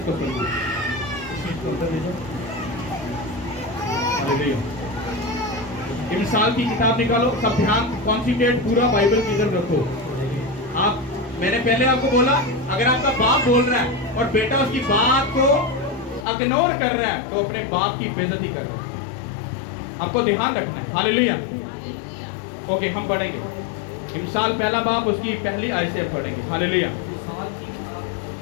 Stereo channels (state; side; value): drops out; right; at 16.2 s